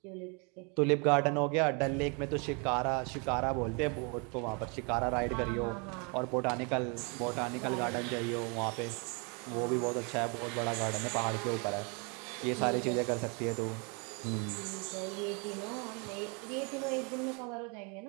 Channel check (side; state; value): left; quieter; 33.8 dB